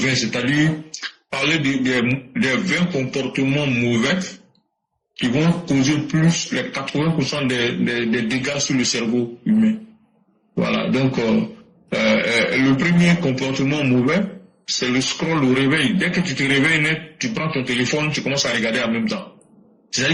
c'est-à-dire parler des 20 comportements mauvais qui vont causer plus les 80% des dégâts sur le cerveau humain. Voilà, donc le premier comportement mauvais, c'est le scroll au réveil. Dès que tu te réveilles net, tu prends ton téléphone, tu commences à regarder en même temps.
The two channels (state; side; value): identical; both; correlation 1.00